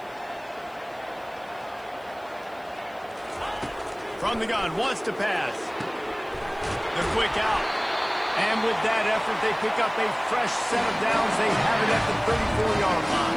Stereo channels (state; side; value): noise; left; hiss, 29 dB below the sound